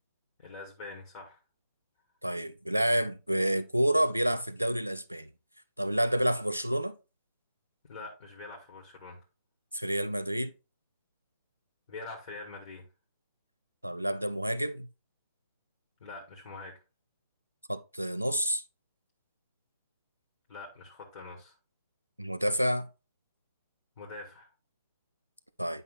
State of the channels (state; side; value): inverted; both; correlation -0.93